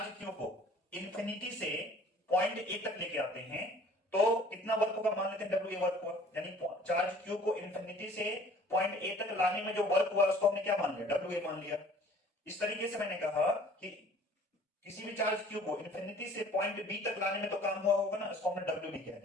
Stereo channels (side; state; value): both; normal; correlation 0.52